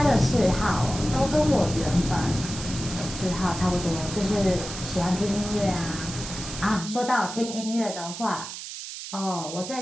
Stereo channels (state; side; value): noise; right; hiss, 9 dB below the sound